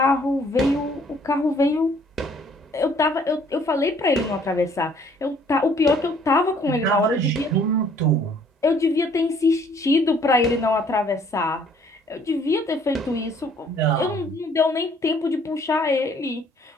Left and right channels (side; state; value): both; normal; correlation 0.60